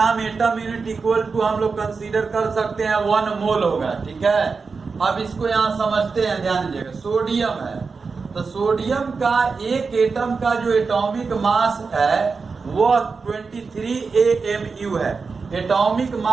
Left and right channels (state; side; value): quieter; left; 4.7 dB